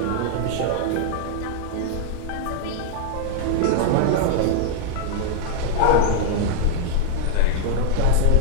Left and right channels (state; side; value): different; both; correlation -0.01